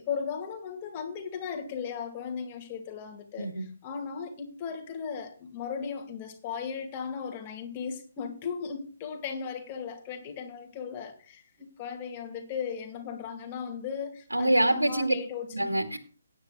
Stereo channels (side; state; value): both; inverted; correlation -0.78